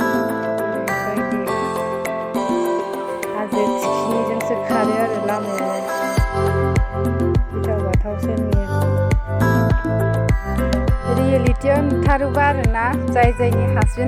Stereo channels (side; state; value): both; identical; correlation 1.00